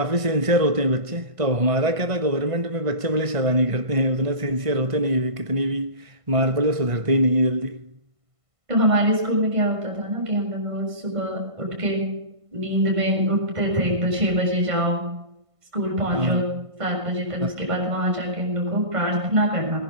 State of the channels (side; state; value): left; late; 1.5 ms